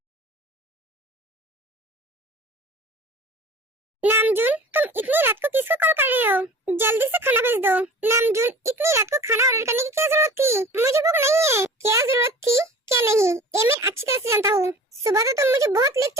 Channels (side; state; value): both; normal; correlation 0.42